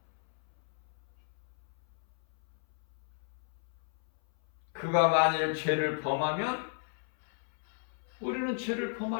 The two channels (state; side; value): silent; right; 55 dB below the other